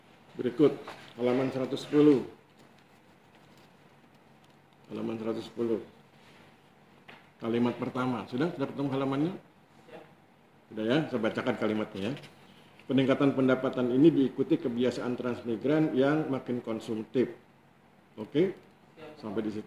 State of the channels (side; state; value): both; identical; correlation 1.00